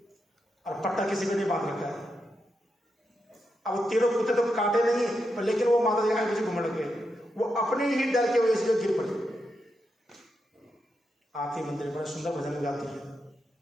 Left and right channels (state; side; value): normal; both; correlation 0.85